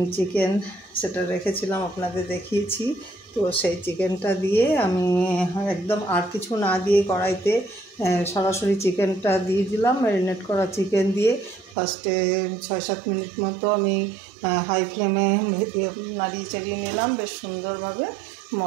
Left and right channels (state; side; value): drops out; left; at 11.8 s